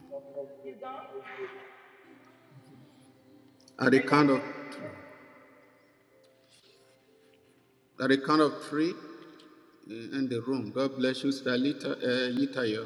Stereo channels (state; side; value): identical; both; correlation 1.00